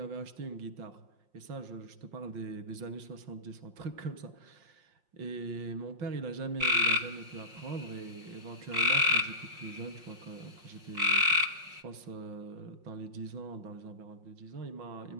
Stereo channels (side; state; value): left; late; 5.7 ms